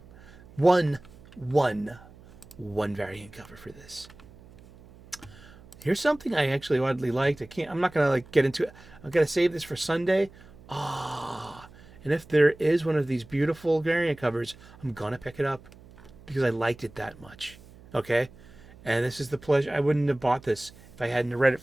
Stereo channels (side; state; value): right; noise; hum, 22 dB below the sound